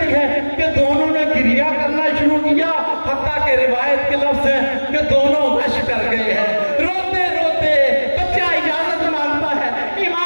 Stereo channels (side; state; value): both; inverted; correlation -1.00